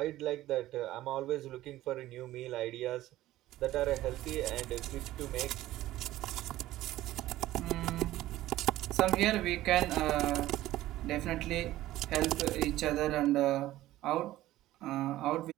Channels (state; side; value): quieter; left; 15.4 dB